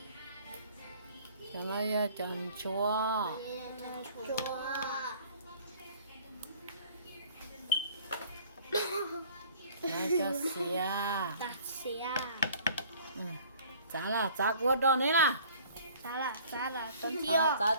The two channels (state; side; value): inverted; both; correlation -0.52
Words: cho nó tròn chua nó cho xìa Ta xìa. giá của đó này là Giá là con thiêu. giá